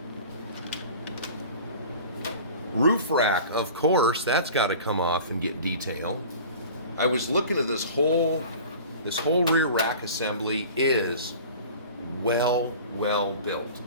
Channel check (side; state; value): both; inverted; correlation -0.41